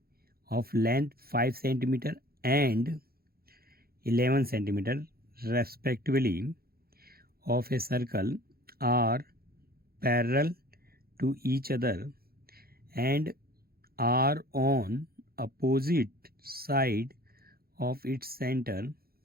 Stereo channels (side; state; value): left; late; 0.44 ms